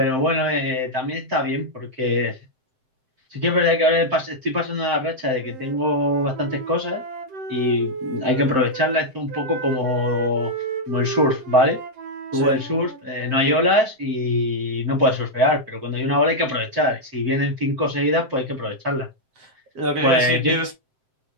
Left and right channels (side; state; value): left; late; 7.7 ms